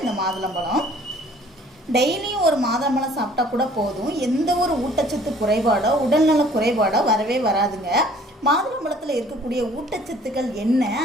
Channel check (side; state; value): both; normal; correlation 0.55